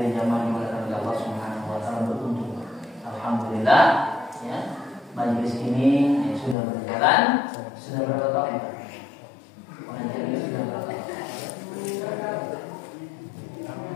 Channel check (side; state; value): right; drops out; at 6.6 s